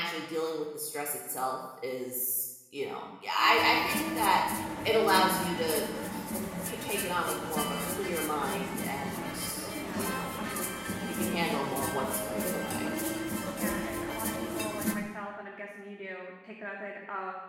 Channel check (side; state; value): both; identical; correlation 1.00